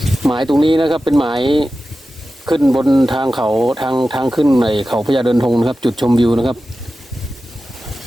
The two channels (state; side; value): normal; both; correlation 0.94